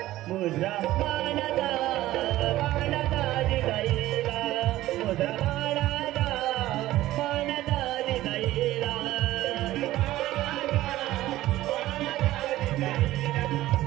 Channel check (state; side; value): quieter; left; 15.5 dB